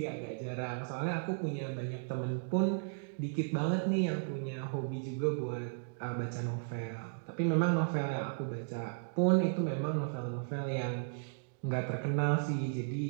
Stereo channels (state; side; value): silent; left; digital silence